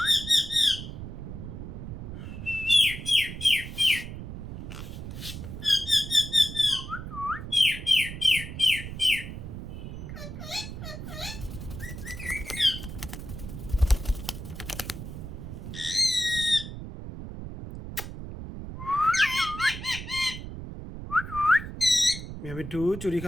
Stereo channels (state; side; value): noise; right; rumble, 9 dB below the sound